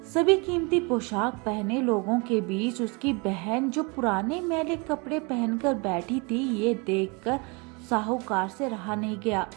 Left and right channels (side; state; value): left; quieter; 30.1 dB